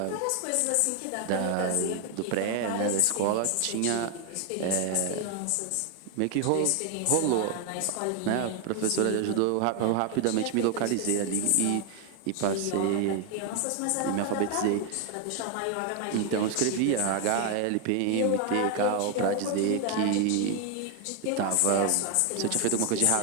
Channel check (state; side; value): different; both; correlation 0.01